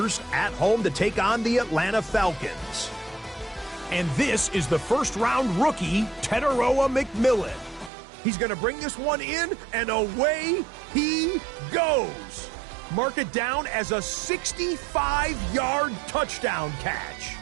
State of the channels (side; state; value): left; drops out; at 7.9 s